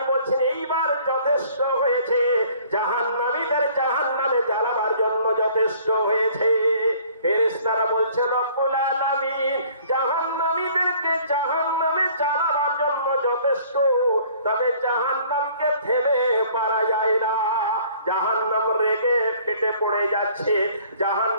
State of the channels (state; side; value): inverted; both; correlation -0.55